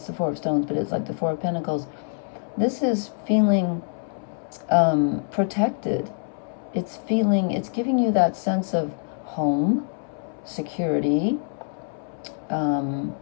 the 4 of stones, but it's like the 4 of pentacles. This is feeling protected. It's giving you that sense of home, security,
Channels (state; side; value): silent; right; 62 dB below the other